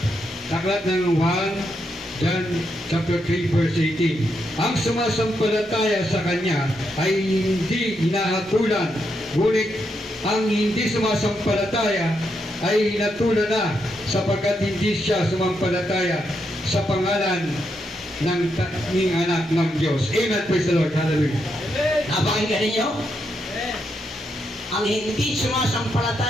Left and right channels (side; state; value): both; normal; correlation 0.81